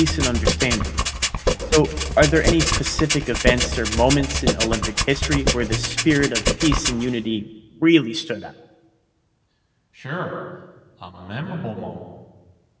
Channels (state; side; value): identical; both; correlation 1.00